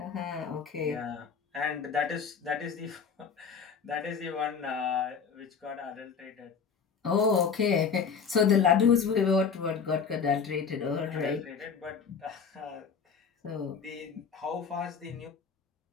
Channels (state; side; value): quieter; right; 6.2 dB